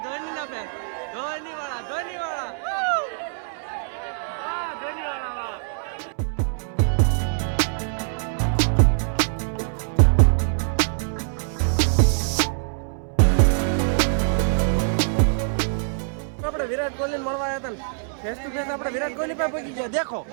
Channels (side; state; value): left; silent; 63 dB below the other